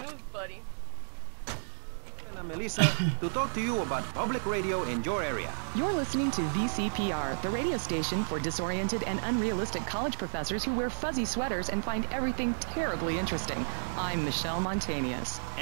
buddy. And Melissa, to talk to you about public radio in your area. You're listening to VCPR, the radio station for disoriented and unrealistic college professors who wear fuzzy sweaters and find everything terribly interesting. I'm Michelle Montanius.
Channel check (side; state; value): left; silent; digital silence